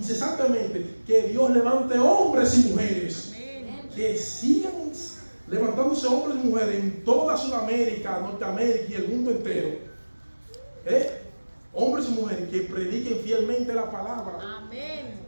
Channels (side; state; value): both; inverted; correlation -1.00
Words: que Dios levante hombres y mujeres. Amén. Que sigan levantándose hombres y mujeres en toda Sudamérica, Norteamérica y el mundo entero. Hombres y mujeres que prediquen fielmente la palabra. Amén.